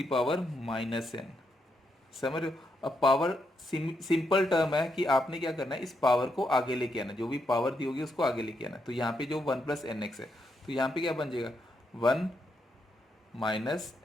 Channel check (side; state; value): both; normal; correlation 0.81